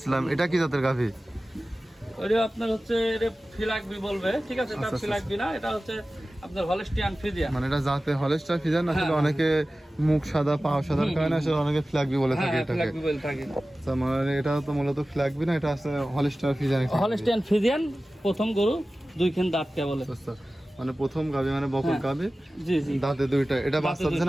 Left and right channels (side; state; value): both; normal; correlation 0.96